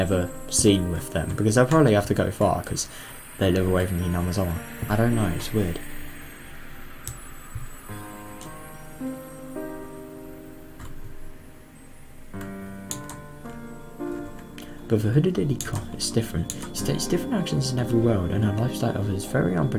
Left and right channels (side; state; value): both; identical; correlation 1.00